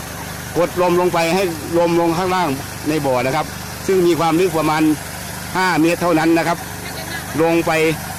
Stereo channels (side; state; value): both; identical; correlation 1.00